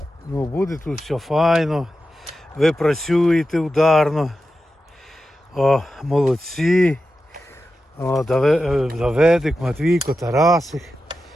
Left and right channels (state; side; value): normal; both; correlation 0.91